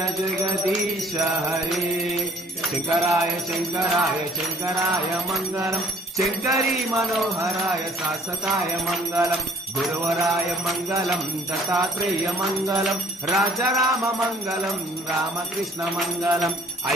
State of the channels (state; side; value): normal; both; correlation 0.57